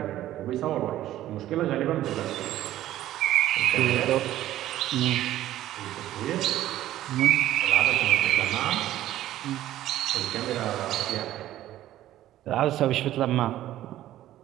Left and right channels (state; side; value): quieter; left; 13.6 dB